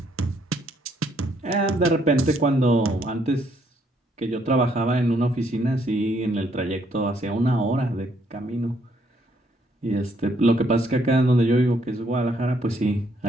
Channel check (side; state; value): both; normal; correlation 0.70